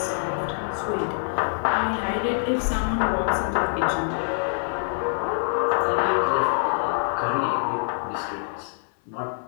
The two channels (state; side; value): silent; right; 60 dB below the other